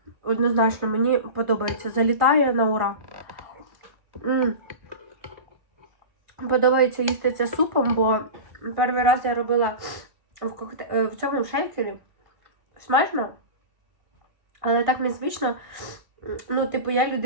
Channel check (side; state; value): left; late; 1.5 ms